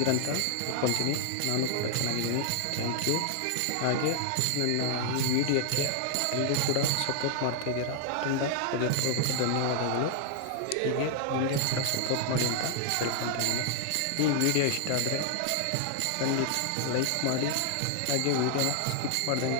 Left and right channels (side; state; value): both; different; correlation 0.00